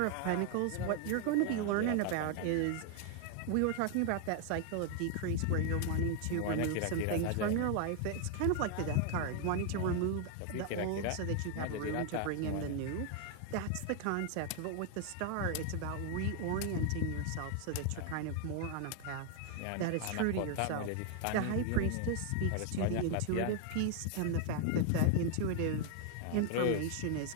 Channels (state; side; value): different; both; correlation 0.00